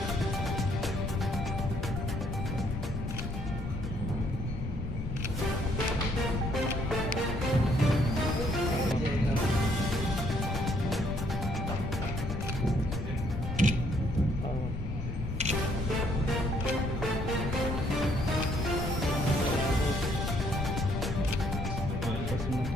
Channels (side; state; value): left; noise; rumble, 5 dB below the sound